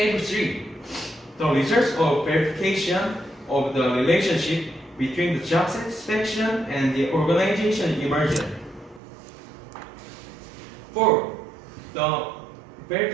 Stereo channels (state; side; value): drops out; left; at 9.0 s